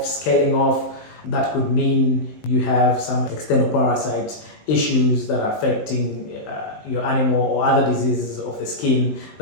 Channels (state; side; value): late; right; 19 ms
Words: scaling off? That could mean you have some external parasite issues that are affecting your animal, or other diseases of the skin